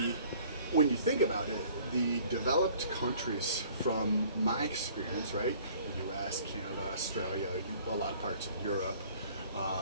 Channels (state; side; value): inverted; both; correlation -0.54